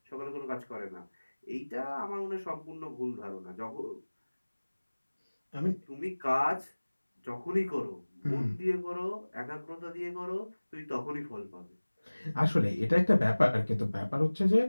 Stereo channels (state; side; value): inverted; both; correlation -1.00